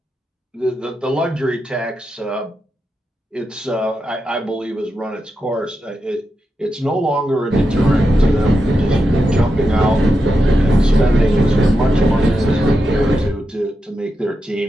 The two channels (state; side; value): normal; both; correlation 0.88